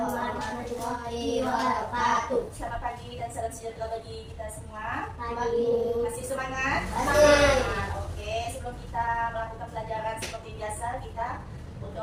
warahmatullahi wabarakatuh. Selamat pagi dan salam sejahtera bagi kita semua. Pagi. Masih semangat? Masih. Oke, sebelum kita melakukan pelajaran seperti biasa, kita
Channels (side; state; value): both; identical; correlation 1.00